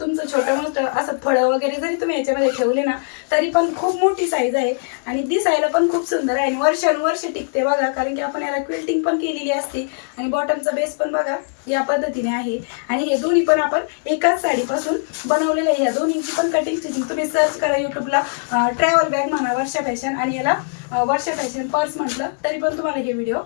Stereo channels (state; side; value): silent; right; digital silence